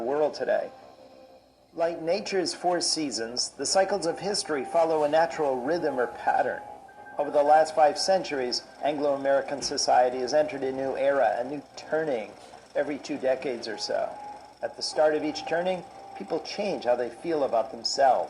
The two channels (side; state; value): both; identical; correlation 1.00